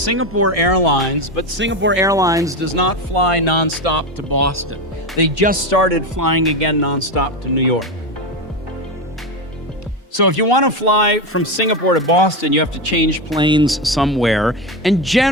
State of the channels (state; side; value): normal; both; correlation 0.16